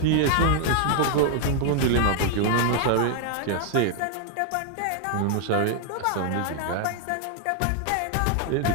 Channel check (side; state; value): both; different; correlation 0.00